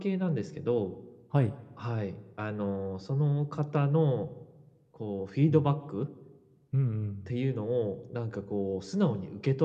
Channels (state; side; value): identical; both; correlation 1.00